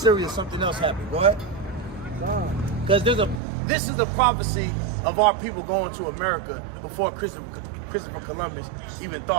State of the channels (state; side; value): drops out; left; at 3.4 s